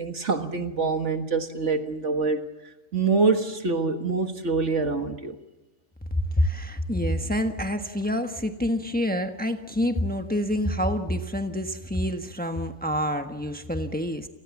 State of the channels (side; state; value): both; normal; correlation 0.26